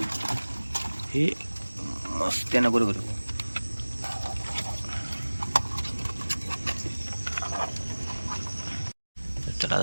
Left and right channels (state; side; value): inverted; both; correlation -1.00